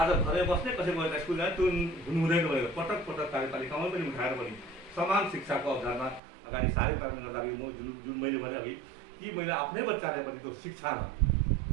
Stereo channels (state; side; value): drops out; left; at 6.2 s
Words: घरै बस्ने, कसैको बच्चा स्कुल जाने त्यो हुनु हुँदैन भनेर पटक पटक कार्यपालिकामा पनि उठाएर पनि समान शिक्षाको अवधारणा अगाडि सार्ने कारणले गर्दाखेरि म जुन मैले भने अघि कि मैले आफ्नै बच्चालाई पनि त्यो शिक्षामा